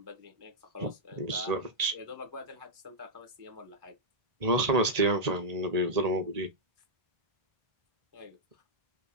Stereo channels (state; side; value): late; left; 1.8 ms